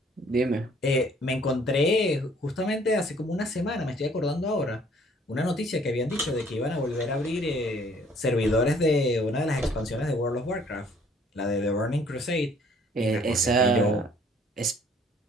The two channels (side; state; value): both; normal; correlation 0.59